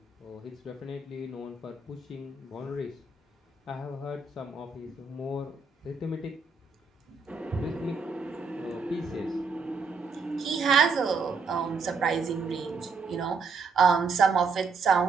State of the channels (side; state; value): left; quieter; 4.5 dB